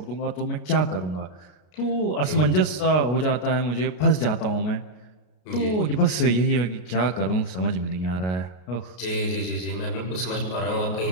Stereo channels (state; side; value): late; right; 33 ms